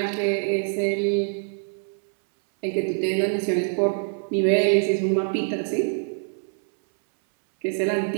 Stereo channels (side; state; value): left; silent; 62 dB below the other